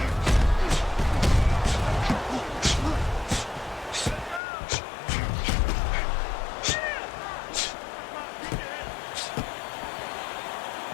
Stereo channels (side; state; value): right; drops out; at 4.4 s